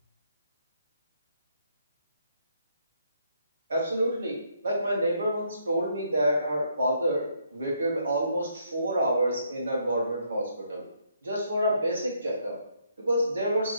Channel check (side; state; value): both; inverted; correlation -0.72